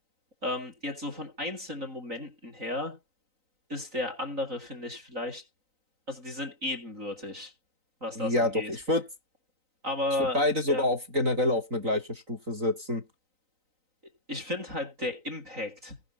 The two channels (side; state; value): left; late; 3.9 ms